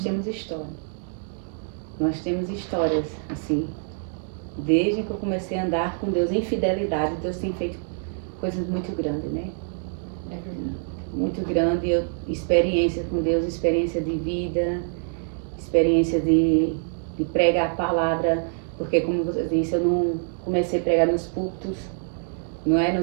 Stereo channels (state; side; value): silent; left; 62 dB below the other